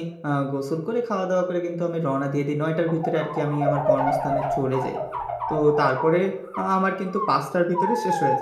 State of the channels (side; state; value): both; identical; correlation 1.00